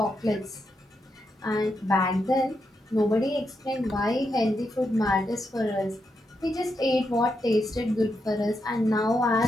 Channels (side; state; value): both; normal; correlation 0.83